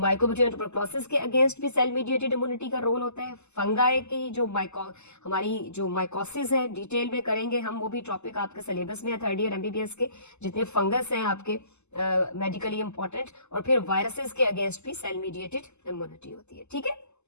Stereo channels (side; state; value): right; late; 0.82 ms